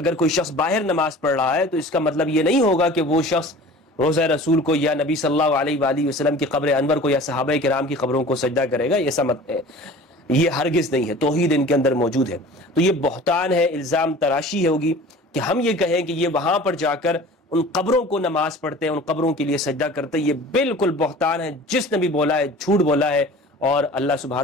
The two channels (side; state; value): both; normal; correlation 0.42